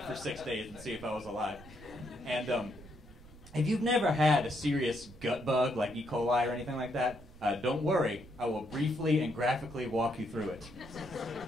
for 6 days and see if I was alive. And if you've never had a serious gut bug like E. coli or anything like that, don't worry. I will briefly and graphically walk you through it.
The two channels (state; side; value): noise; right; rumble, 19 dB below the sound